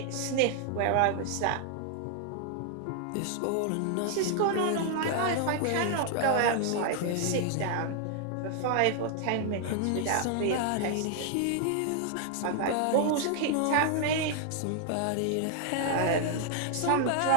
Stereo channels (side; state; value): both; different; correlation 0.00